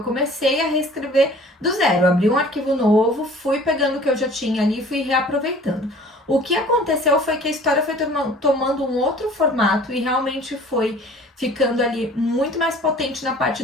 comecei a reescrever do zero. Abri um arquivo novo, fui pegando o que eu já tinha ali e fui reaproveitando. O que aconteceu foi que a história foi tomando um outro formato e realmente foi ficando ali muito mais potente na parte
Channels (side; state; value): both; normal; correlation 0.49